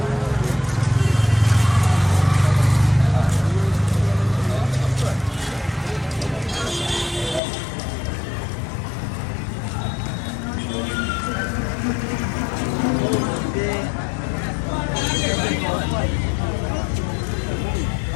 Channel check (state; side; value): drops out; right; at 7.4 s